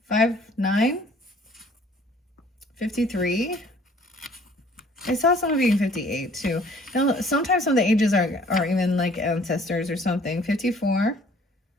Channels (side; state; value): both; normal; correlation 0.56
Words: 5, 9. 53. I saw someone being 58 too. Now, sometimes some of the ages are even like ancestors or something. 54.